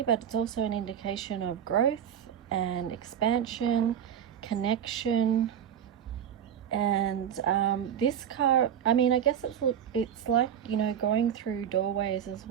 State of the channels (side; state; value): left; quieter; 9.1 dB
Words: but it's also an indication of growth and expansion, connection. And this card, I mean, I guess it's like, you know, going through doorways as